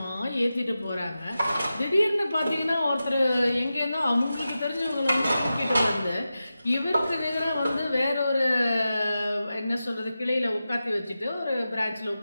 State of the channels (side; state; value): both; inverted; correlation -0.92